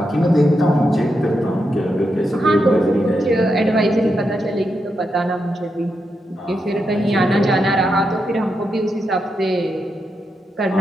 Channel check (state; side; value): normal; both; correlation 0.85